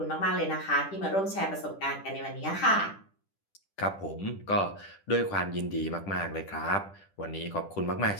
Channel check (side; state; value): right; late; 10 ms